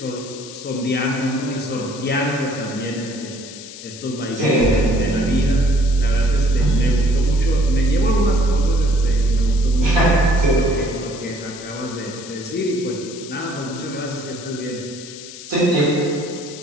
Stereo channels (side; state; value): left; noise; hiss, 14 dB below the sound